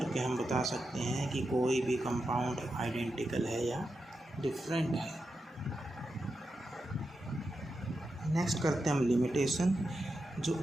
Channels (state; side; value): normal; both; correlation 0.88